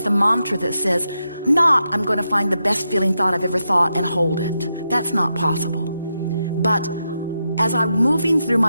a mantra that says, not I'm going to find the best feeling thought I've ever thought and hold it. That's not possible. But as I'm moving through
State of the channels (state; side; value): inverted; both; correlation -0.86